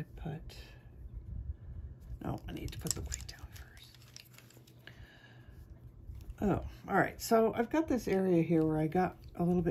put, no, I need to put the white down first. Oh, all right, so I've got this area here where I got a little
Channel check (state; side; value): identical; both; correlation 1.00